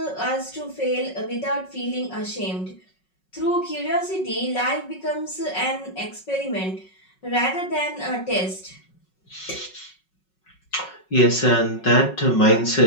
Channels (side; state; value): right; late; 5.4 ms